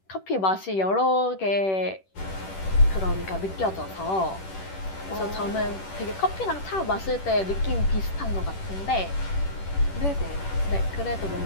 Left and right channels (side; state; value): right; late; 10 ms